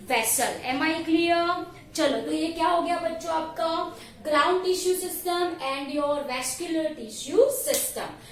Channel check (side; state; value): both; identical; correlation 1.00